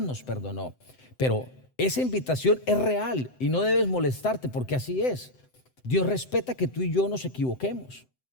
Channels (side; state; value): right; late; 7.8 ms